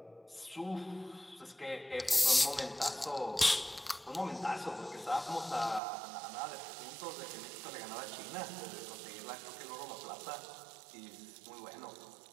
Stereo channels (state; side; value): drops out; left; at 5.8 s